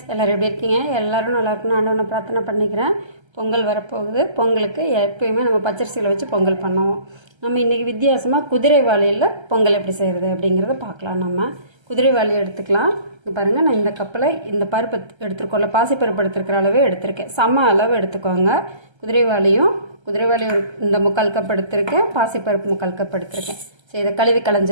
எல்லோரும் எப்படி இருக்கீங்க? எல்லோரும் நல்லா இருக்கணும் ஆண்டவனை பிரார்த்தனை பண்ணிக்கிறேன். பொங்கல் வரப்போகுது. பொங்கலுக்கு எப்பயுமே நம்ம பச்சரிசியில் வச்சு பொங்கல் பண்ணுவோம். நம்ம இன்றைக்கி வித்தியாசமாக குதிரைவாளியில் பொங்கல் எப்படி செய்கிறது அப்படிங்கிறத பார்க்கலாம். நம்ம குதிரைவாளி எடுத்துக்கலாம். இங்கே பாருங்கள், நான் இந்த கப்பில் இந்த பருப்பு எடுத்துருக்கோம்ல, பாசிப்பருப்பு எடுத்துருக்கிற அளவே எடுத்திருக்கேன். சம அளவு எடுத்துக்கோங்க. குதிரைவாளி ஒரு இந்த 3/4 கப் எடுத்திருக்கேன். பாசிப்பருப்பு 3/4 கப் எடுத்திருக்கேன். சரி, இதை கழுவி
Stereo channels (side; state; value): left; late; 1.3 ms